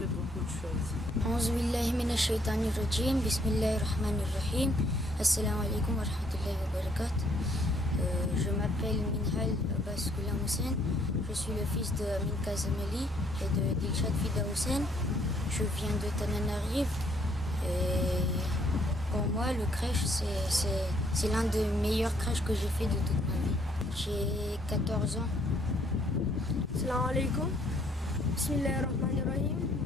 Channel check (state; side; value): normal; both; correlation 0.66